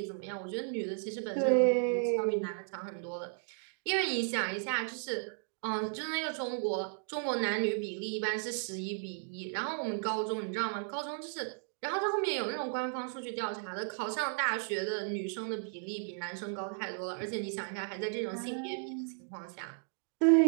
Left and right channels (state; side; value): silent; left; 55 dB below the other